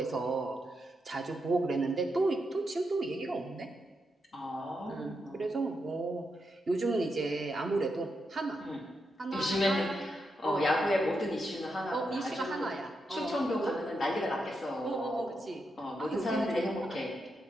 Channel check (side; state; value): both; normal; correlation 0.84